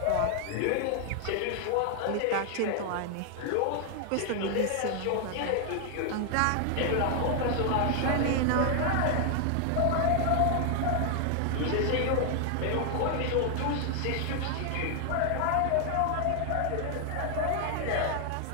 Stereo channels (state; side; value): different; both; correlation 0.00